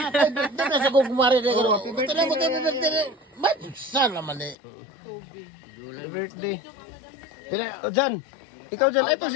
Ay, birthday na sa gugumari na gano'n. happy birthday, Ito na mo tayo man. birthday. Ba't saan naman eh? Happy birthday. Pila, oh, dyan. Ikaw dyan. Ay, pag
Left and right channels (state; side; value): drops out; right; at 4.5 s